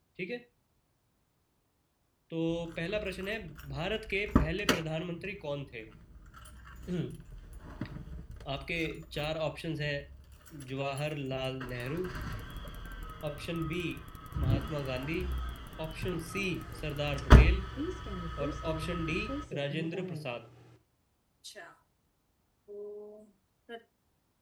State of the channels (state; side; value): identical; both; correlation 1.00